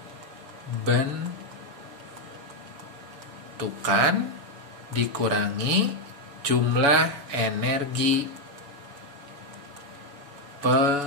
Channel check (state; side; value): late; left; 7.1 ms